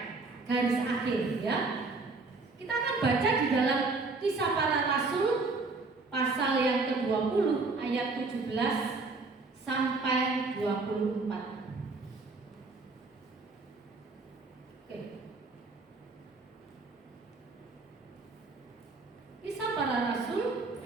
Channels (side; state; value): left; quieter; 3.7 dB